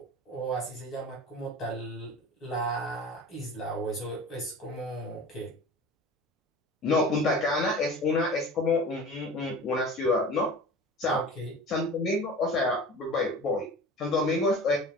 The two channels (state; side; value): normal; both; correlation 0.37